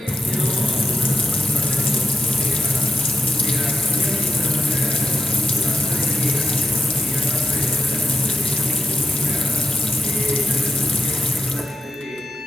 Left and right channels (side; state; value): both; normal; correlation 0.90